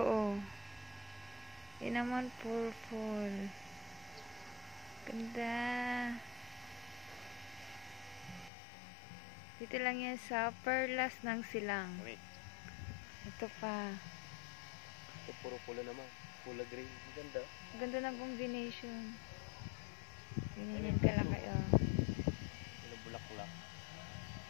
Yan naman purple. Ganda. Dito lang yan sa Perlas ng Silang. Wait. Ito pa. Ito puro pula naman. Pula green. Ganda. Ganda ng combination. Ganyan kalaki, oh. Yung bulaklak.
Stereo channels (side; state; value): right; drops out; at 8.5 s